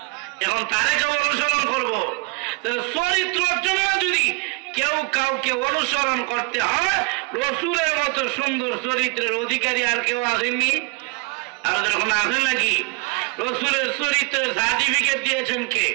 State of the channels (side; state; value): left; quieter; 28.8 dB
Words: এখন তারে কেউ অনুসরণ করবো? চরিত্রের জন্য যদি কেউ কাউকে অনুসরণ করতে হয়, রসুলের মতো সুন্দর চরিত্রের অধিকারী আর কেউ আসেননি। আর যখন আসে নাকি, রসুলের চরিত্রের সার্টিফিকেট দিয়েছেন কে?